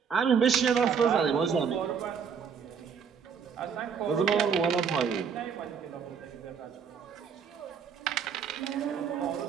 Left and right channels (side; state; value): left; quieter; 6.7 dB